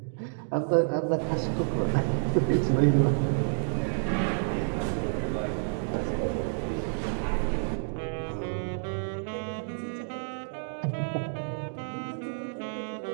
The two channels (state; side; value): silent; left; digital silence